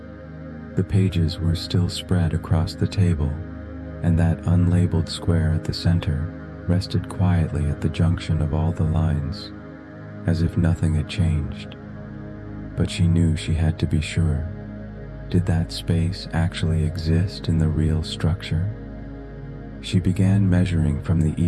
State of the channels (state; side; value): identical; both; correlation 1.00